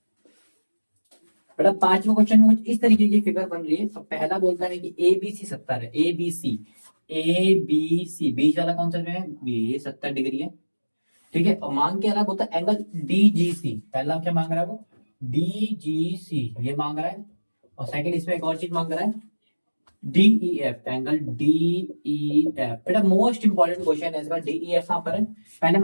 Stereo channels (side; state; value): both; inverted; correlation -1.00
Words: बेटा पांचवा क्वेश्चन में कुछ इस तरीके की फिगर बन रही है। अब पहला बोलता है कि ए बी सी 70 है। ए बी सी, ए बी सी, बीच वाला कौन सा जो है, ये 70 डिग्री है। ठीक है। और मांग क्या रहा है, बोलता है एंगल डी जी सी। पहला क्या मांग रहा है वो, डी जी सी ये मांग रहा है। और सेकंड इसमें एक और चीज मांग रहा है, D E F, angle D E F. बेटा मोस्ट इंपॉर्टेंट क्वेश्चन है इसका। डी ई एफ कहां पर है, पहले